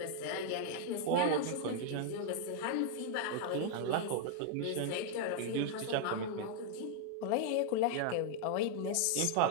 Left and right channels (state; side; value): different; both; correlation 0.00